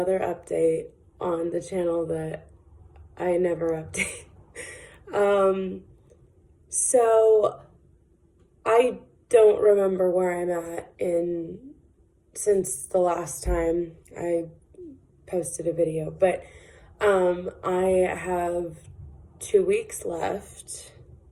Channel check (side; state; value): both; identical; correlation 1.00